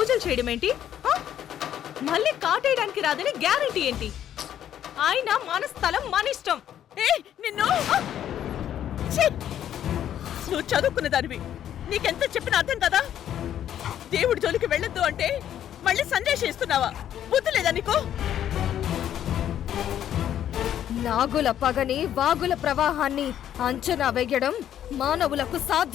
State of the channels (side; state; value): right; quieter; 10.6 dB